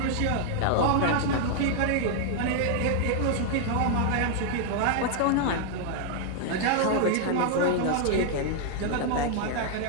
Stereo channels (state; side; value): different; both; correlation 0.00